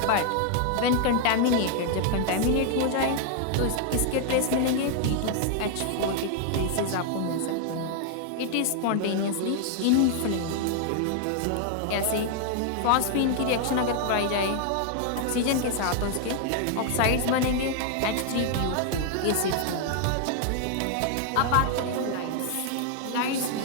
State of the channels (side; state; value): both; different; correlation 0.00